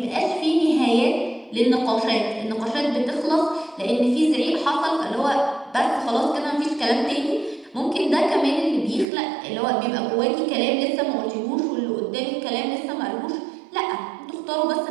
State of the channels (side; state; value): left; drops out; at 9.1 s